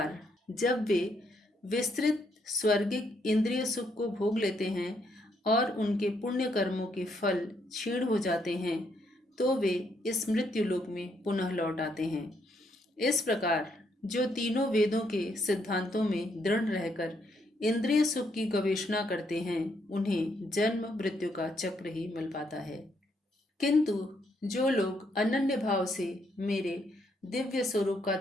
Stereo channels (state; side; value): normal; both; correlation 0.74